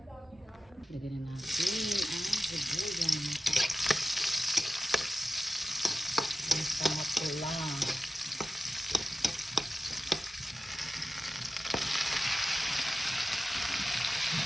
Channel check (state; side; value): normal; both; correlation 0.93